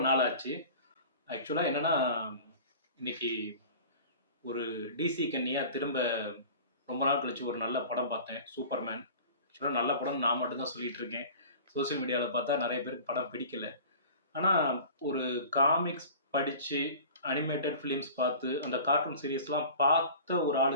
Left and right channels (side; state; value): both; inverted; correlation -0.40